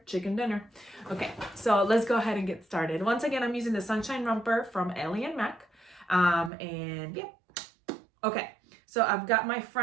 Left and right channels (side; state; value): left; drops out; at 6.5 s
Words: chicken dinner. Okay, so let's go ahead and get started. Once again, I'm using the Sunshine Romper from Ellie and Mac. And yeah. Okay, so I've got my